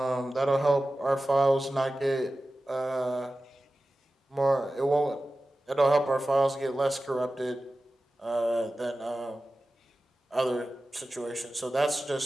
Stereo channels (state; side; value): normal; both; correlation 0.95